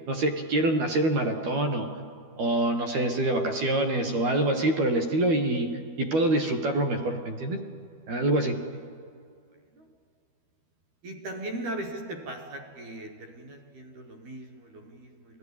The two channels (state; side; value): late; left; 12 ms